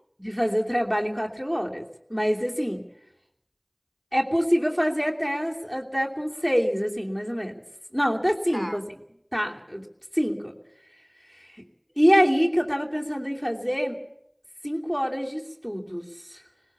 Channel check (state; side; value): identical; both; correlation 1.00